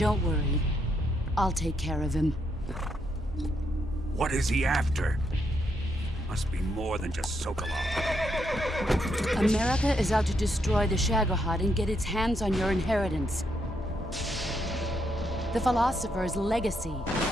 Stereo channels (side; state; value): both; normal; correlation 0.77